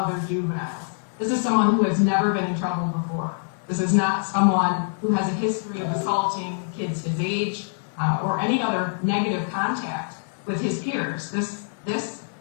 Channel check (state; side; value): silent; right; digital silence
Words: juveniles. This is someone who has never been in trouble before. This is not someone who has a history of assaulting kids his age or any other negative contact with his peers. This